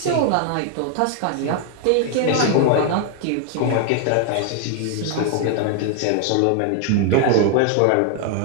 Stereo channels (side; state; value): both; different; correlation 0.00